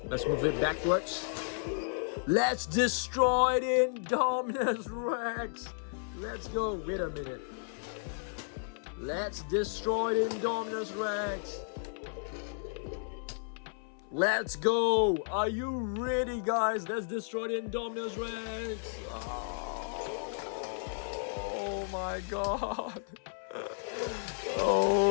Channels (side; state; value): right; silent; 56 dB below the other